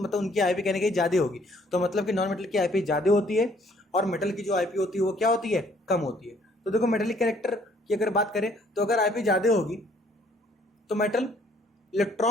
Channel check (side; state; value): both; normal; correlation 0.62